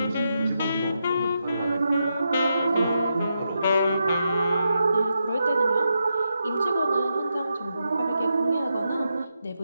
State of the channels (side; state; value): both; inverted; correlation -0.85